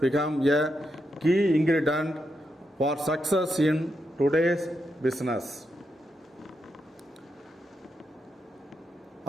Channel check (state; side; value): normal; both; correlation 0.83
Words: a key ingredient for success in today's business.